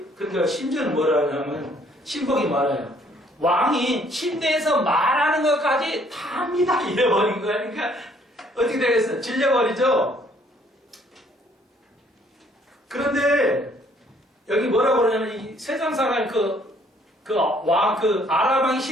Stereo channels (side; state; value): both; normal; correlation 0.63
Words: 그러니까 심지어는 뭐라 하냐면 신복이 말해요. 왕이 침대에서 말하는 것까지 다 합니다. 이래버린 거야. 그러니까 어떻게 되겠어? 질려버리죠? 그런데 여기 뭐라고 그러냐면 이 세상 사람 아랍 왕이